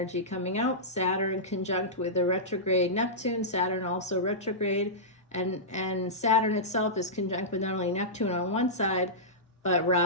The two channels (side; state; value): both; normal; correlation -0.15